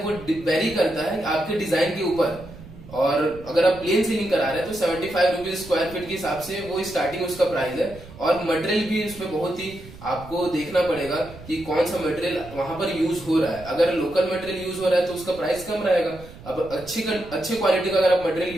वो वेरी करता है आपके डिजाइन के ऊपर। और अगर आप प्लेन सीलिंग करा रहे हैं तो 75 रुपीज स्क्वायर फीट के हिसाब से वो स्टार्टिंग उसका प्राइस है। और मटेरियल भी उसमें बहुत ही आपको देखना पड़ेगा कि कौन सा मटेरियल वहां पर यूज हो रहा है। अगर लोकल मटेरियल यूज हो रहा है तो उसका प्राइस कम रहेगा। अब अच्छे क्वालिटी का अगर आप मटेरियल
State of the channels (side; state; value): right; noise; rumble, 17 dB below the sound